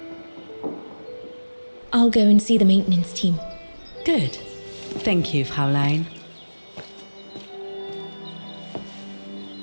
I'll go and see the maintenance team. Good. Thank you, Fraulein.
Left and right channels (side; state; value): both; inverted; correlation -1.00